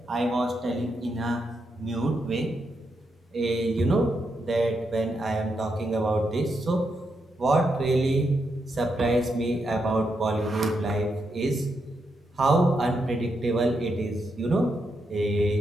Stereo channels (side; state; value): both; normal; correlation 0.82